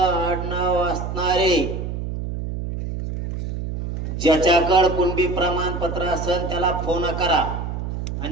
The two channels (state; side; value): noise; right; hum, 5 dB below the sound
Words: आडनाव असणारे, ज्याच्याकडे कुणबी प्रमाणपत्र असेल त्याला फोन करा